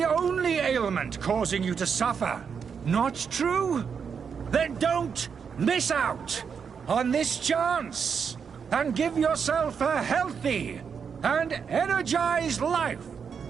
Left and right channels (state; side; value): quieter; left; 6.5 dB